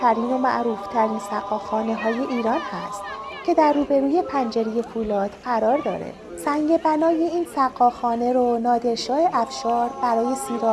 ترین و معروف ترین سقاخانه های ایران هست که در روبروی پنجره فولاد قرار داره. سنگ بنای این سقاخانه رو نادرشاه افشار برای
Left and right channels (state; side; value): identical; both; correlation 1.00